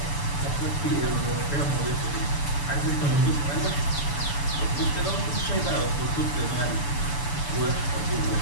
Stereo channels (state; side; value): late; right; 7.0 ms